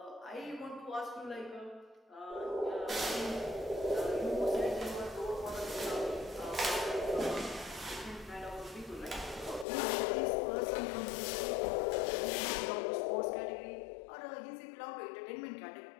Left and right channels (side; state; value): right; drops out; at 9.7 s